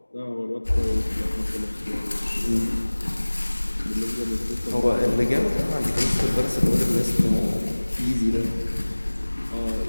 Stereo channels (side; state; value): both; inverted; correlation -1.00